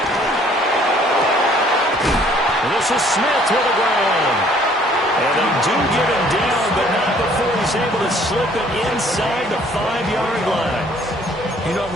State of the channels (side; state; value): both; normal; correlation 0.59